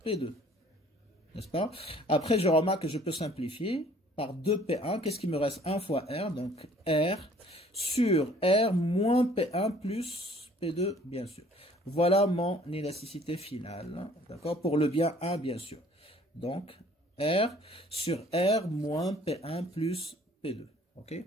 P2. N'est-ce pas? Après, je remarque que je peux simplifier par 2P1. Qu'est-ce qui me reste? 1 fois R. Donc, R sur R moins P1 plus P2, bien sûr. Voilà mon élasticité finale. D'accord? Pour le bien 1, bien sûr. Donc, R sur R moins P1 plus P2. OK?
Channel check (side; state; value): both; normal; correlation 0.56